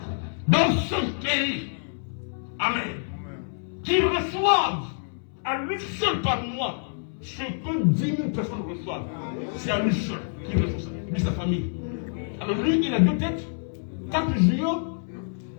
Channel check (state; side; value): silent; right; 60 dB below the other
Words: dans ce pays, amen, qui reçoivent à lui seul par mois ce que 10 000 personnes reçoivent. C'est à lui seul qu'il reçoit ça, lui sa famille. Alors lui, il a 2 têtes, 4 yeux.